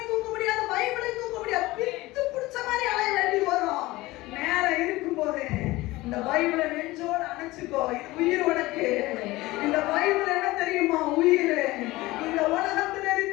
தூக்க முடியாது, பைபிளையும் தூக்க முடியாது, பித்து பிடிச்ச மாதிரி அலைய வேண்டியது வரும். நேரம் இருக்கும் போது இந்த பைபிளை நெஞ்சோட அணைச்சுக்கோ. இது உயிர் உனக்கு. இந்த பைபிள் என்ன தெரியுமா? உயிர். இந்த உலகத்தில்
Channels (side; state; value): right; quieter; 19.4 dB